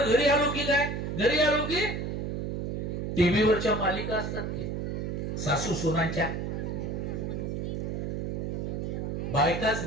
घरी आलो की काय, घरी आलो की टीव्हीवरच्या मालिका असतात की सासू सुनांच्या,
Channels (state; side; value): noise; right; hum, 3 dB below the sound